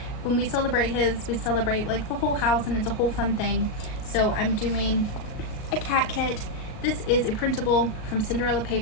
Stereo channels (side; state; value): right; late; 37 ms